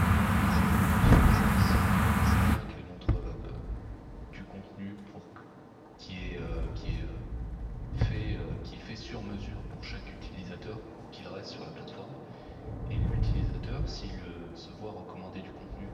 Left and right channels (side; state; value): both; identical; correlation 1.00